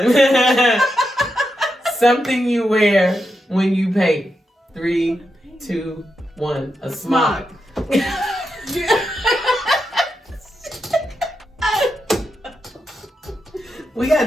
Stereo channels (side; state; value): both; normal; correlation 0.86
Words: Something you wear when you paint. 3, 2, 1. A smock. We